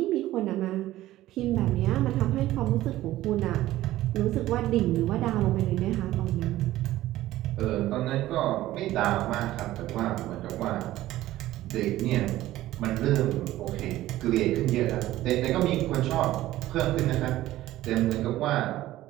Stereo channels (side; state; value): left; quieter; 15.3 dB